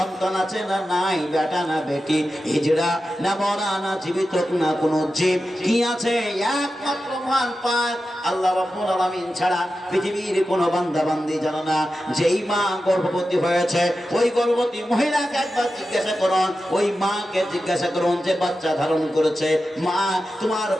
আছে না নাই, বেটা না বেটি, হিজড়া না মরা না জীবিত না কোনো জীব, কি আছে একমাত্র মহান পাক আল্লাহ রাব্বুল আলামিন ছাড়া পৃথিবীর কোনো বান্দা বান্দি জানে না। যেই মা গর্ভবতী হয়েছে ওই গর্ভবতী মহিলাকে একবার জিজ্ঞাসা করুন, ওই মাকে জিজ্ঞাসা করুন যে বাচ্চা ধারণ করেছে, মা তোমার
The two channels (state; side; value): normal; both; correlation 0.92